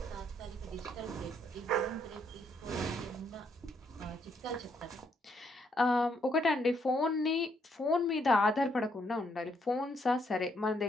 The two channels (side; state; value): both; normal; correlation 0.73